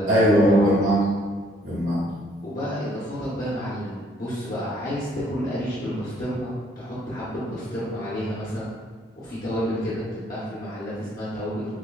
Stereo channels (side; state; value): both; normal; correlation 0.64